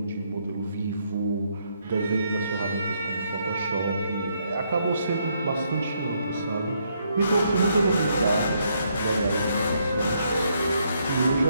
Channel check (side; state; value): both; inverted; correlation -0.74